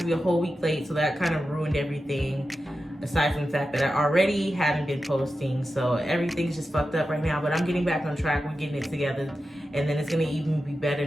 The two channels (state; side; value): normal; both; correlation 0.92